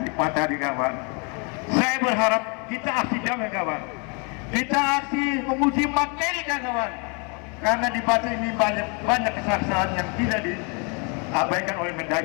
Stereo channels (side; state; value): right; quieter; 34.1 dB